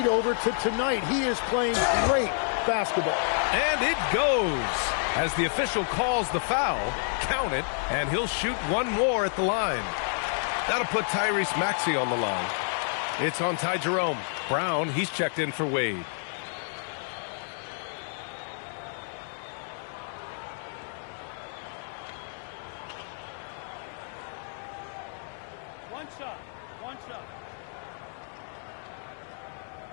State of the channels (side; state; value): right; silent; 58 dB below the other